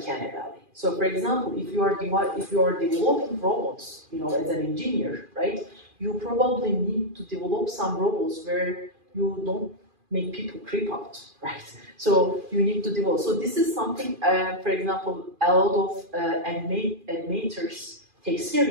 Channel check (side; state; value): left; late; 2.4 ms